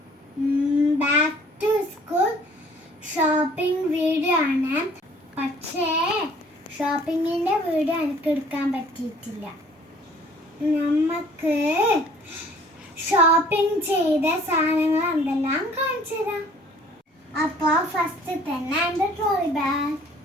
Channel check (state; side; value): normal; both; correlation 0.55